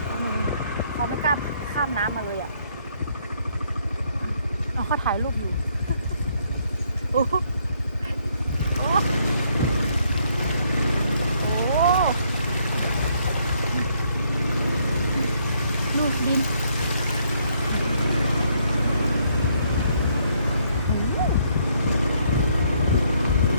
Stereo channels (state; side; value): inverted; both; correlation -0.70